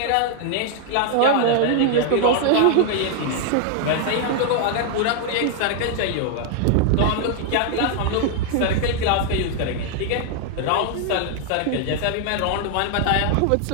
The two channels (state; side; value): different; both; correlation 0.00